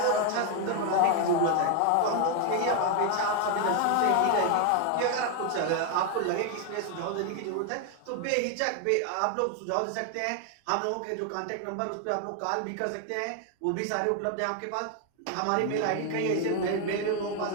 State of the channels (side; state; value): both; different; correlation 0.01